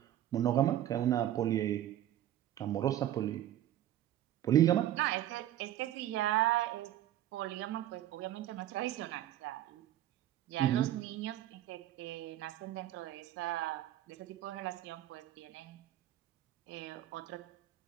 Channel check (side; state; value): left; quieter; 12.5 dB